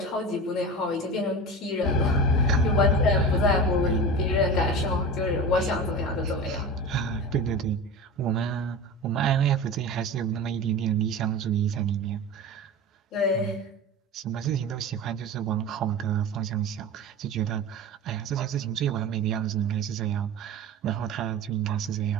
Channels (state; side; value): normal; both; correlation 0.30